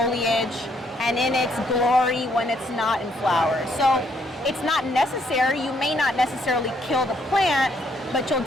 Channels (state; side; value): normal; both; correlation 0.71